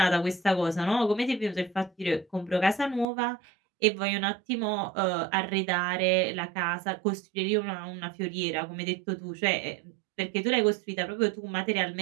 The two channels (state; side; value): drops out; left; at 3.1 s